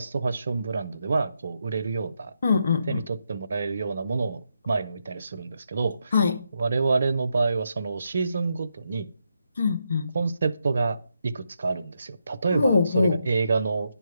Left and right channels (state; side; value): inverted; both; correlation -0.82